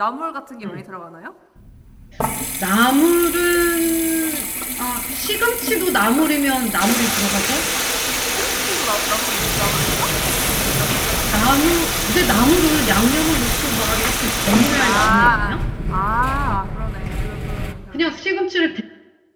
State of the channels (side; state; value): both; identical; correlation 1.00